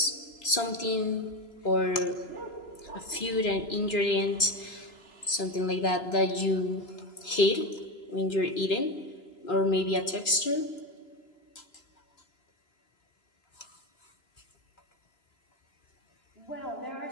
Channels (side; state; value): right; late; 3.5 ms